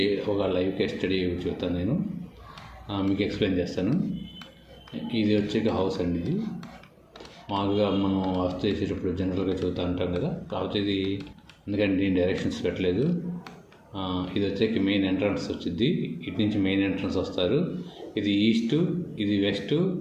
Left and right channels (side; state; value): both; identical; correlation 1.00